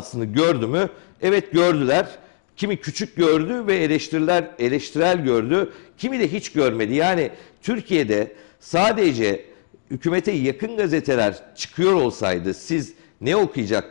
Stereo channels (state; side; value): silent; right; 57 dB below the other